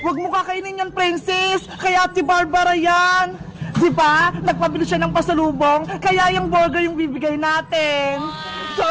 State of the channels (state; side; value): identical; both; correlation 1.00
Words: mo kakainin yan, Princess. Kaya Ate Barbara yan. Di ba? Nagpabili siya ng pasalubong, kaya yung burger yung bibigay natin.